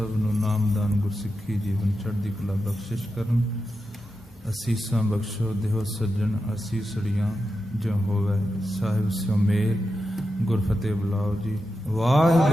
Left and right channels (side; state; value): both; normal; correlation 0.89